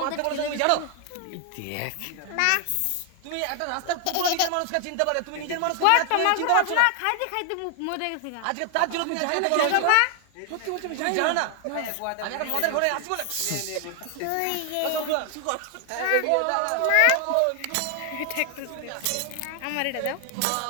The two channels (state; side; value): different; both; correlation 0.00